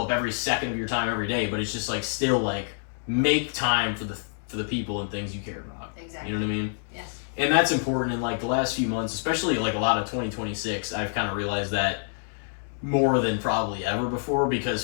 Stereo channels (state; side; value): silent; right; digital silence